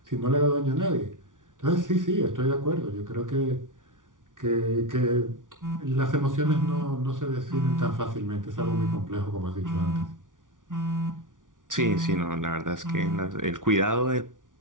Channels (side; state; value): left; late; 0.88 ms